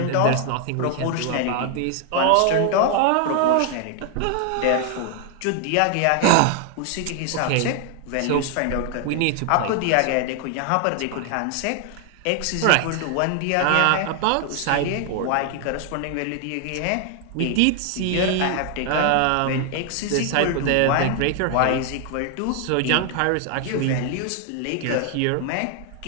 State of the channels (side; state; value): both; different; correlation 0.00